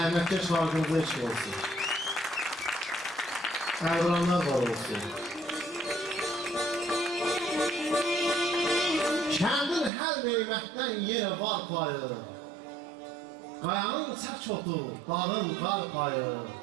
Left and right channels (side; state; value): left; drops out; at 9.9 s